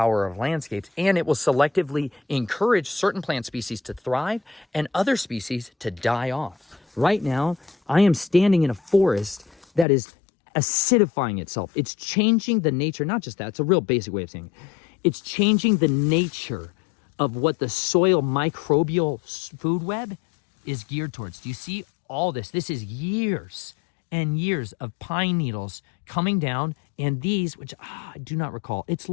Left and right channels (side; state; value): right; drops out; at 9.9 s